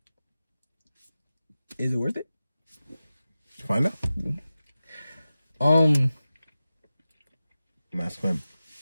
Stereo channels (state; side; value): inverted; both; correlation -0.95